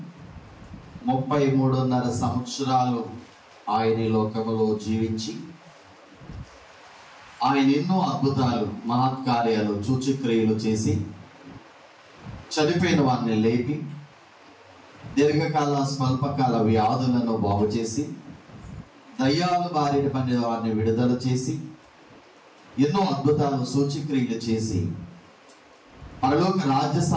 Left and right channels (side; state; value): both; identical; correlation 1.00